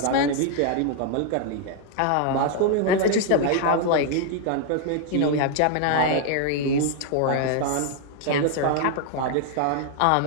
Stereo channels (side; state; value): both; different; correlation 0.00